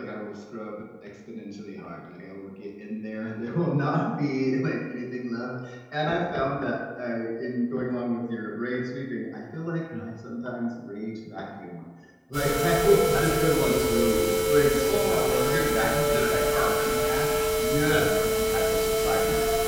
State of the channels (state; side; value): identical; both; correlation 1.00